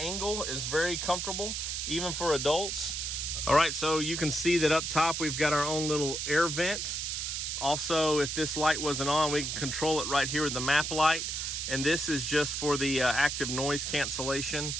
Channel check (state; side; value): noise; right; hiss, 3 dB below the sound